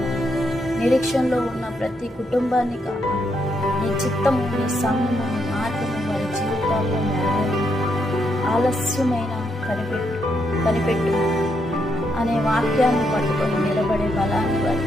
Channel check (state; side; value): normal; both; correlation 0.79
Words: నిరీక్షణలో ఉన్న ప్రతి కుటుంబాన్ని కాపాడు. నీ చిత్తము, నీ సమయము, నీ మార్గము వారి జీవితాల్లో నెరవేరు. ఆలస్యమైన కనిపెట్టు అనే వాక్యాన్ని పట్టుకొని నిలబడే బలాన్ని